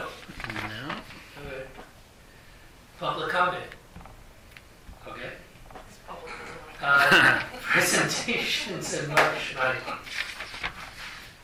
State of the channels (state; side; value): identical; both; correlation 1.00